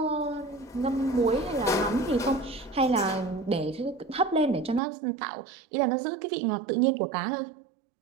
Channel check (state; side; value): drops out; left; at 4.8 s